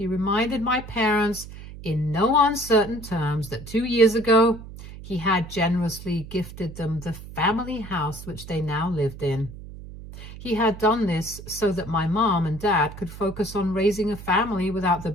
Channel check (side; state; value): right; noise; hum, 14 dB below the sound